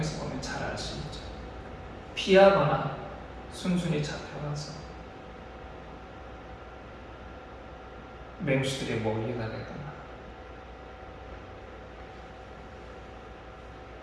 보면 잘 알 수 있죠. 피하거나 순순히 잡혀가서 맹수들의 먹이가 되거나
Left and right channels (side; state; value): both; identical; correlation 1.00